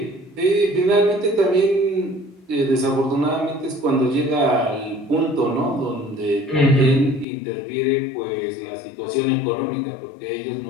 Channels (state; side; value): drops out; right; at 7.2 s